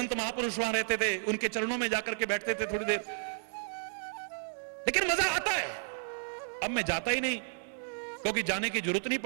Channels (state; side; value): silent; left; digital silence